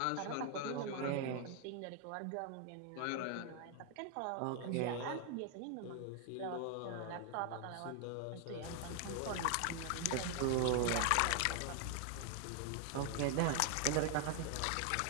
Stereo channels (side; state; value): both; different; correlation 0.00